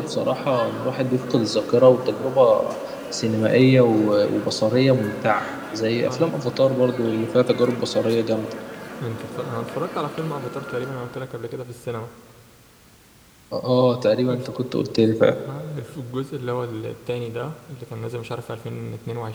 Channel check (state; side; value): identical; both; correlation 1.00